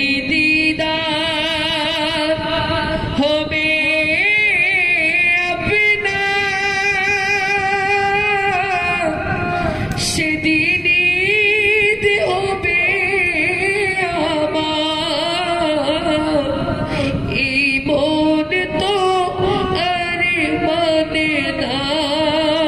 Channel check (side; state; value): both; identical; correlation 1.00